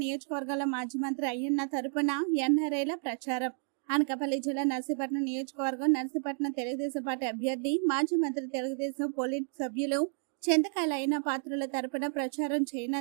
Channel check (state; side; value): silent; left; 57 dB below the other